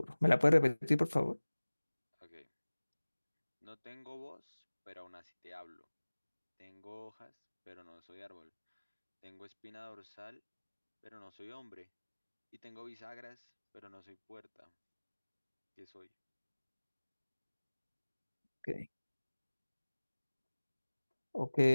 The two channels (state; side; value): inverted; both; correlation -1.00